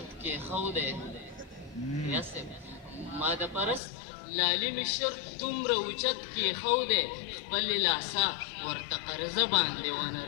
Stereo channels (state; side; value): drops out; right; at 3.8 s